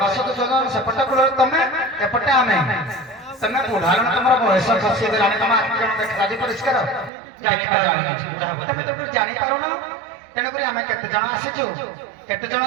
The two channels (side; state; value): left; drops out; at 7.1 s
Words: দশ তো জন সপটা কোଳରେ ତମେ এপটে ଆମେ ତମେ ବୁଢାର ତମର ବୟସ ଖସି ଗଲାଣି ତମ ଆଖି ଜଣ ଦେଖା ଯାଉଛି ପରିଷ୍କାର ଜାଣିପାରୁନି ତମେ ତ ଜାଣିପାରୁନ ତେଣୁକରି ଆମେ କେତେ ଜଣ ଆସିଛୁ କେତେ ଜଣ